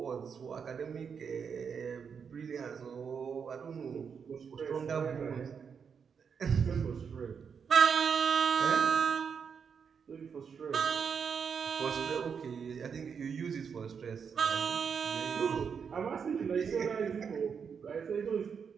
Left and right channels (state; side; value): quieter; left; 6.5 dB